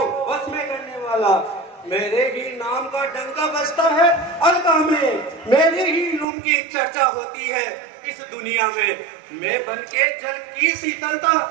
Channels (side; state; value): left; drops out; at 6.2 s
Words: वश में करने वाला। मेरे ही नाम का डंका बजता है अलका में, मेरे ही रूप की चर्चा होती है इस दुनिया में। मैं बन के जल की शीतलता